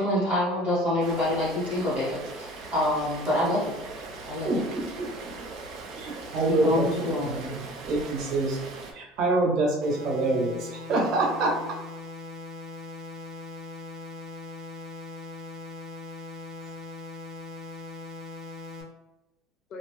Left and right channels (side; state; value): both; normal; correlation 0.45